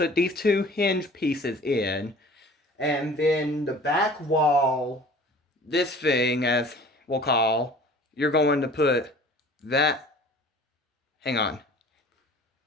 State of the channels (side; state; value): both; normal; correlation 0.46